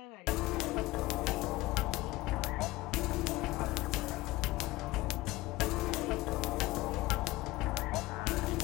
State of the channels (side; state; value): right; quieter; 19.1 dB